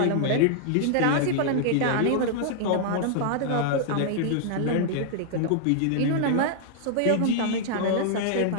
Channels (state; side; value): different; both; correlation -0.01